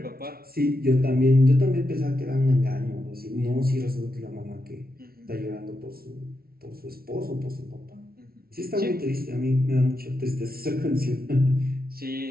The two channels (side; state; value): left; late; 0.44 ms